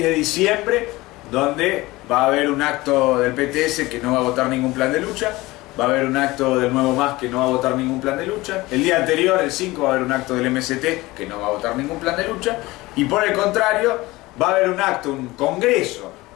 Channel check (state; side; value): quieter; right; 20.2 dB